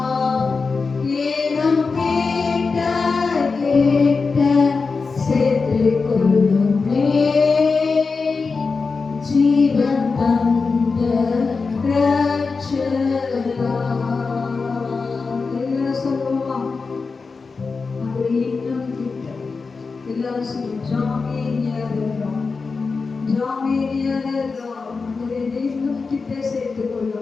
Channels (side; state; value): right; quieter; 4.5 dB